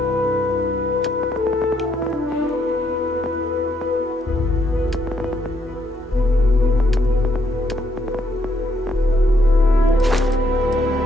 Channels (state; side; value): normal; both; correlation 0.73